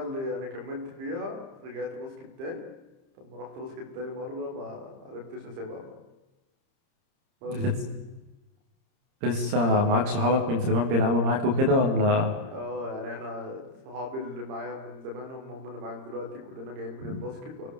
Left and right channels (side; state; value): left; late; 30 ms